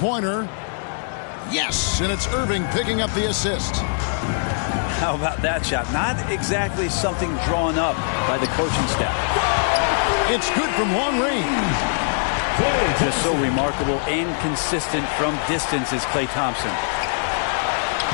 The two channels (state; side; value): silent; right; 64 dB below the other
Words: Yes, and it's Irving picking up the assist. How about that shot? Not exactly something drawn up by the coaching staff. It's good from long range. Just so remarkable and consistent from distance is Klay Thompson.